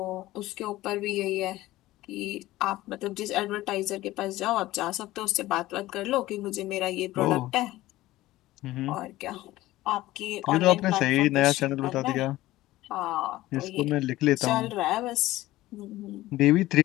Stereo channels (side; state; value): right; quieter; 16.9 dB